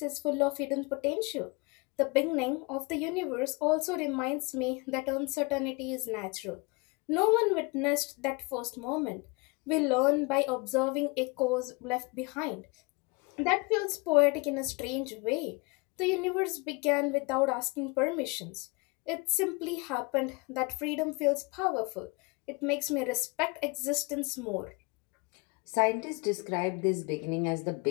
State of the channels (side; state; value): right; quieter; 28.3 dB